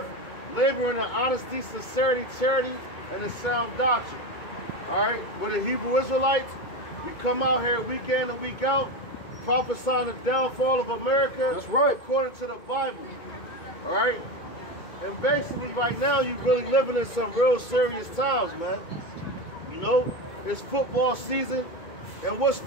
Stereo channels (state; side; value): late; right; 2.2 ms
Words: laboring in honesty, sincerity, charity, and in sound doctrine. All right, we're the Hebrew Israelites. We come out here week in and week out, prophesying the downfall of America. That's right. According to the Bible. All right, and basically right now you're really living in some real serious times, man. You know, it's football season, and what's